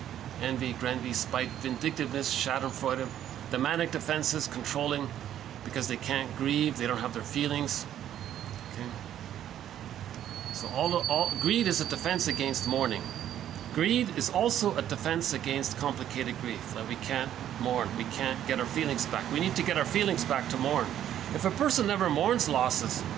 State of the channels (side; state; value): left; quieter; 11.0 dB